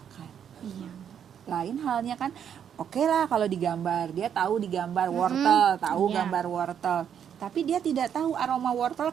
Iya. Lain halnya kan, oke lah kalau digambar, dia tahu digambar wortel, tahu Iya. gambar wortel. Tapi dia tidak tahu aroma wortel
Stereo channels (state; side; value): quieter; left; 8.6 dB